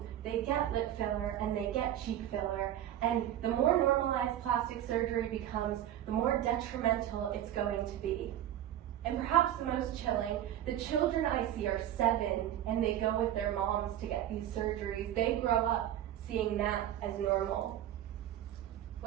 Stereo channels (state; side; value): quieter; left; 11.8 dB